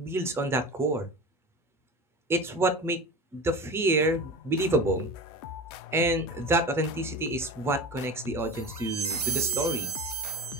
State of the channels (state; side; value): normal; both; correlation 0.31